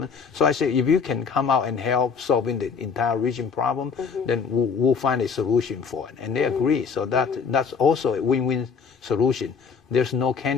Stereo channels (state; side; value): quieter; right; 5.9 dB